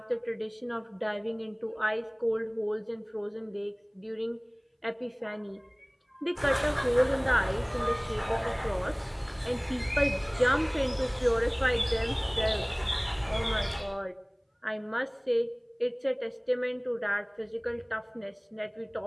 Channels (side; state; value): both; identical; correlation 1.00